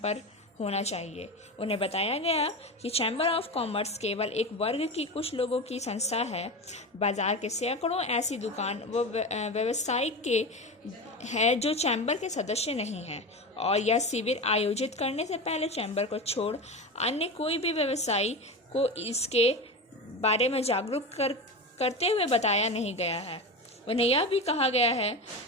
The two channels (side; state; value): both; normal; correlation 0.23